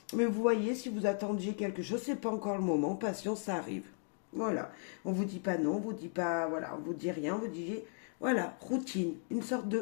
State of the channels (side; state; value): right; silent; 54 dB below the other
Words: Mais vous voyez, si vous attendiez quelque chose, c'est pas encore le moment, patience, ça arrive. Voilà, on vous dit pas non, on vous dit pas, voilà, on vous dit rien, on vous dit, voilà, routine, une sorte